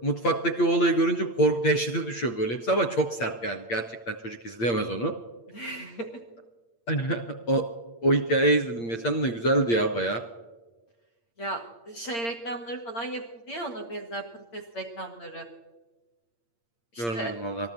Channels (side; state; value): right; late; 8.7 ms